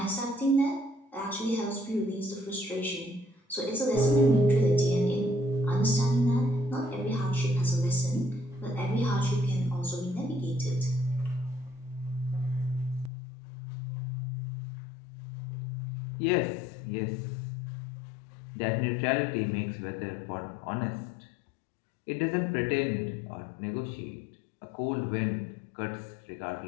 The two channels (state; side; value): drops out; right; at 13.1 s